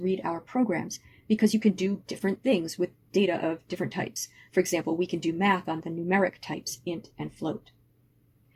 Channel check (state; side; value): identical; both; correlation 1.00